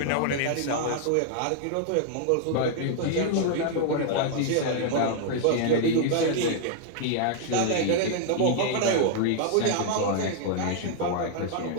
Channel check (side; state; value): both; different; correlation 0.00